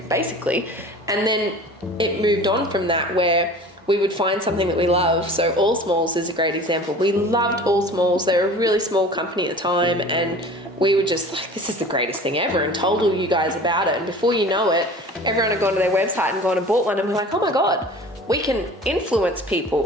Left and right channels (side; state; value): both; normal; correlation 0.42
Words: basically. And then it moved on from that, where we would find something that we love. So All Smalls is a great example. We loved All Smalls. They were a really small company at the time, and we were just like, this is the greatest thing ever, and told all you guys about it. And before you know it, everyone had gone to their website and gone and bought one, and we're like, oh my God, we can influence